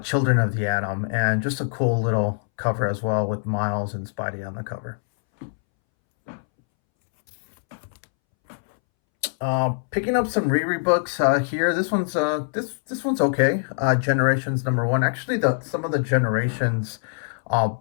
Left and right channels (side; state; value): right; silent; 63 dB below the other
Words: Children of the Atom, and just a cool little cover as well with Miles and Spidey on the cover. Picking up some Riri books here. This one's this one's okay. Generations #1. Actually, some of the Generations